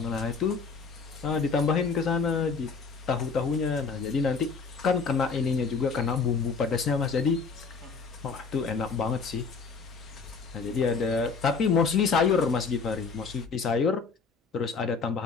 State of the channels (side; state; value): right; quieter; 4.9 dB